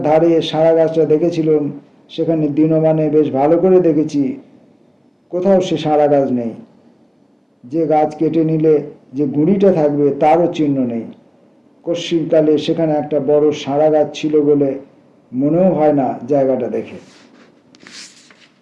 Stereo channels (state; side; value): identical; both; correlation 1.00